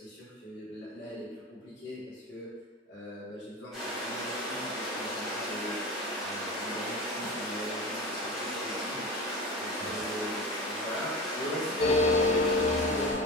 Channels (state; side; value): normal; both; correlation 0.29